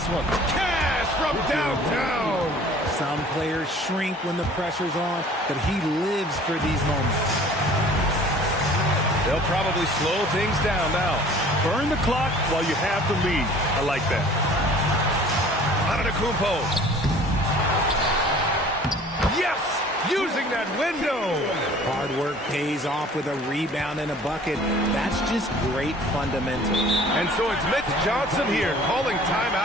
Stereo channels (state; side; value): normal; both; correlation 0.49